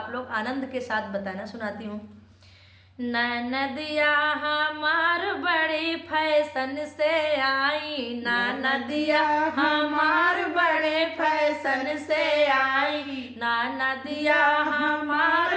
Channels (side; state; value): both; identical; correlation 1.00